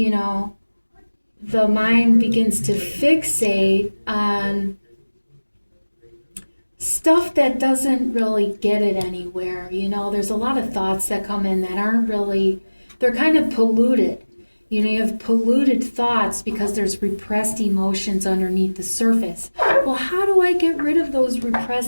know, the mind begins to fixate on stuff that doesn't really get it anywhere. You know, there's a lot of thoughts that come in that aren't really, they're kind of polluted. You know, you have polluted thoughts because there's repressed emotions underneath the surface. Well, how do I get rid of those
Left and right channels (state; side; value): inverted; both; correlation -1.00